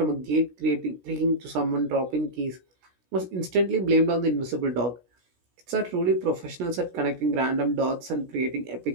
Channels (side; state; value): left; late; 16 ms